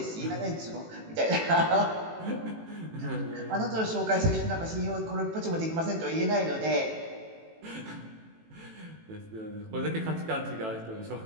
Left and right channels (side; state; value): left; late; 18 ms